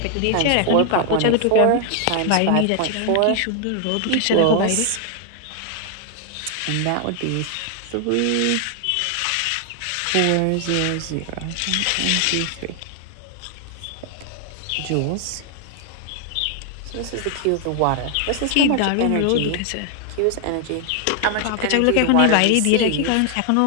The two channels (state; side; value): different; both; correlation 0.00